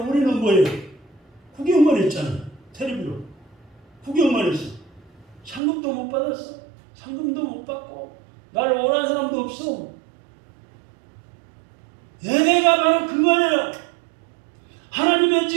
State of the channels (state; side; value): drops out; left; at 5.6 s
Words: 우리는 뭐예요? 구경만 했잖아요. 텔레비로 구경만 했어. 상금도 못 받았어. 상금도 못 받고 나를 원하는 사람도 없어. 예배가 바로 그거예요. 하나님의